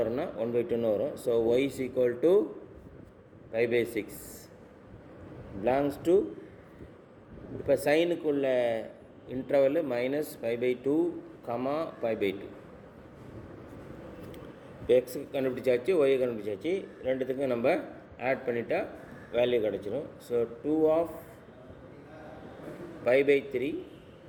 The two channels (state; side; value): identical; both; correlation 1.00